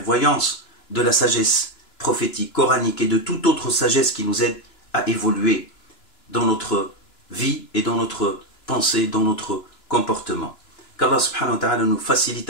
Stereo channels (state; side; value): late; right; 2.9 ms